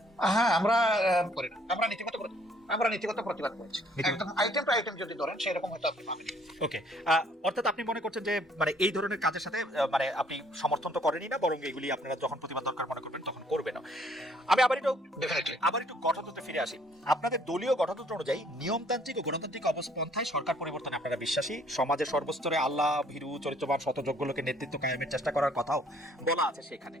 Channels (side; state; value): both; normal; correlation 0.62